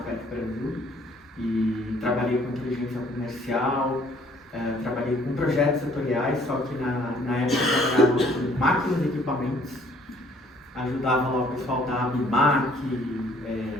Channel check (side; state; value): both; normal; correlation 0.60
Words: Brasil e trabalhei com inteligência comercial, trabalhei com projetos setoriais, só que na época eu trabalhava com máquinas e equipamentos, ajudava lá o pessoal da ABIMAC,